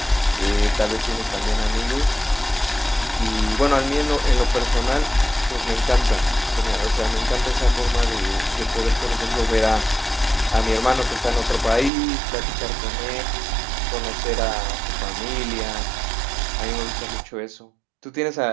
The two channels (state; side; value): drops out; left; at 11.9 s